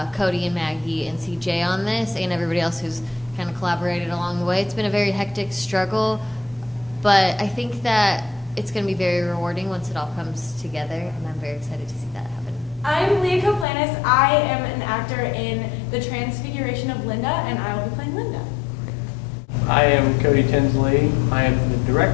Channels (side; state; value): right; drops out; at 13.7 s